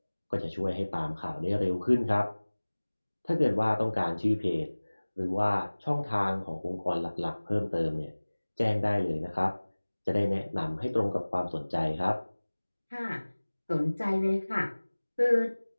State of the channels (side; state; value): both; inverted; correlation -1.00